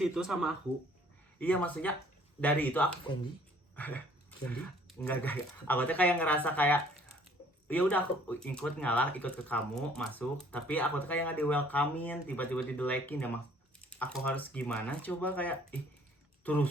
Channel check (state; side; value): normal; both; correlation 0.58